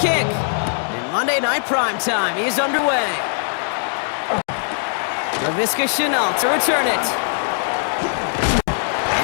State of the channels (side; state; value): right; silent; digital silence